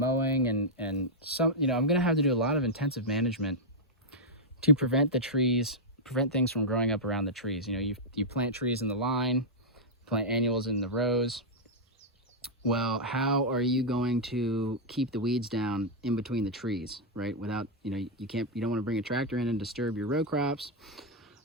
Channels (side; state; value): both; normal; correlation -0.04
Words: and some, you know, I'm going to have to do a lot of intensive management to prevent things from growing up around the trees. You know, you plant trees in the line, plant annuals in the rows. Well, how are you going to keep the weeds down in between the trees, right? Without, you know, you don't want to bring a tractor in and disturb your row crops.